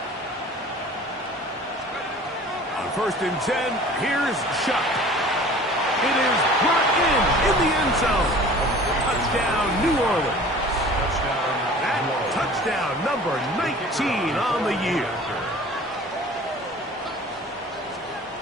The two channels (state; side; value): normal; both; correlation 0.45